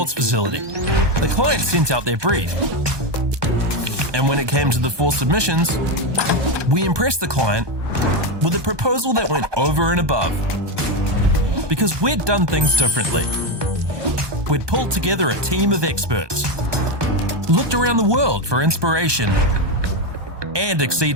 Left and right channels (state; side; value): late; left; 1.2 ms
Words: facility. The client sent out their brief. And when it came to the 4 submissions, we impressed the client with a proposal that went over and above. Because we'd done things differently. We'd pulled together a team of experts, looked around the world for inspiration, and